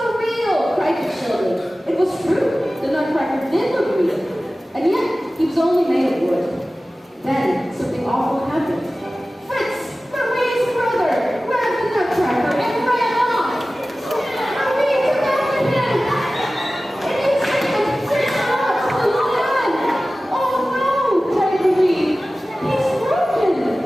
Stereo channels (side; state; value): both; normal; correlation 0.96